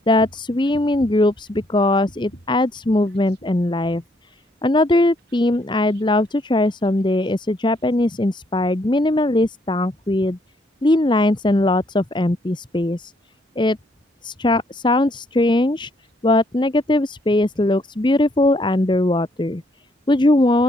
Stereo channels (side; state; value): both; normal; correlation 0.70